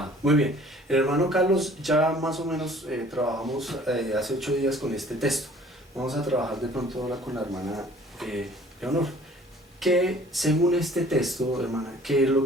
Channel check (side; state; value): both; normal; correlation 0.52